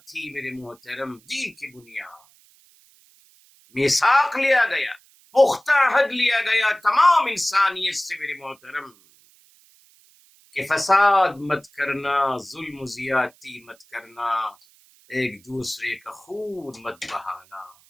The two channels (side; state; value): right; noise; hiss, 30 dB below the sound